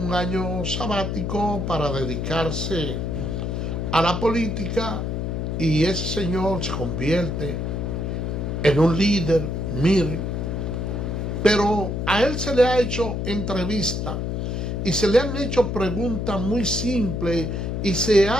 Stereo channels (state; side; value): noise; left; hum, 2 dB below the sound